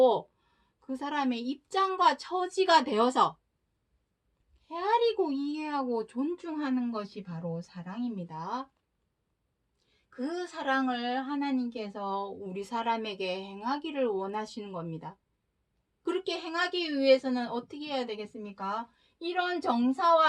그 사람의 입장과 처지가 되어서 헤아리고 이해하고 존중하는 것이 바로 사랑입니다. 그 사랑을 하나님께서 우리 사람에게 행하기를 원하시는 겁니다. 그렇게 행하기 위해서는 어떻게 해야 되겠습니까? 이런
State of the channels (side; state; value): both; identical; correlation 1.00